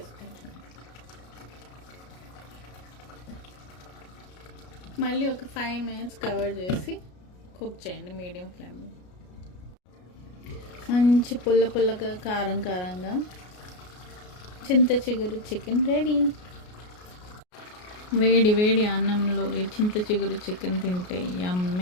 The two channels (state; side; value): late; right; 33 ms